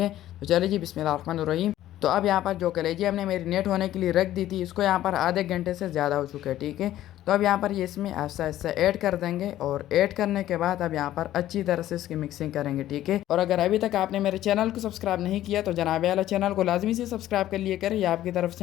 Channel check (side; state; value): right; quieter; 13.4 dB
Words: तो चलिए जी बिस्मिल्लाहिर्रहमानिर्रहीम। तो अब यहाँ पर जो कलेजी हमने मैरिनेट होने के लिए रख दी थी इसको यहाँ पर आधे घंटे से ज़्यादा हो चुका है। ठीक है, तो अब यहाँ पर ये इसमें ऐसा ऐसा ऐड कर देंगे और ऐड करने के बाद अब यहाँ पर अच्छी तरह से इसकी मिक्सिंग करेंगे। ठीक है, और अगर अभी तक आपने मेरे चैनल को सब्सक्राइब नहीं किया तो जनाब वाला चैनल को लाजमी से सब्सक्राइब कर लिए करें। ये आपकी तरफ